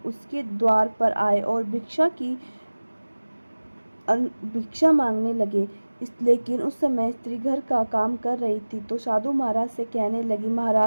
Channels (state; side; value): inverted; both; correlation -1.00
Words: उसके द्वार पर आए और भिक्षा मांगने लगे। लेकिन उस समय स्त्री घर का काम कर रही थी, तो साधु महाराज से कहने लगी,